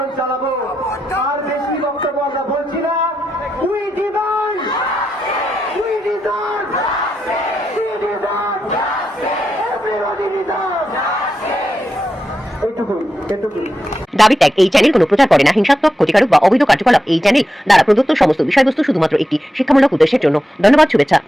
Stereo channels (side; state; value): both; normal; correlation 0.87